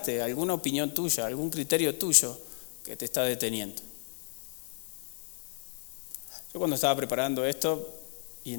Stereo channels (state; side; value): silent; right; 56 dB below the other